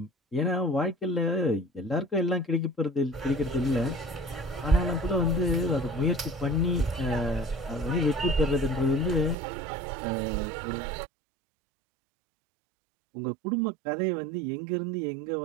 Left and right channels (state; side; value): drops out; left; at 9.3 s